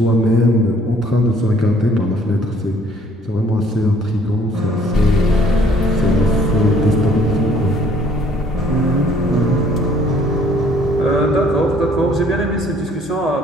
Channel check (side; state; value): both; normal; correlation 0.60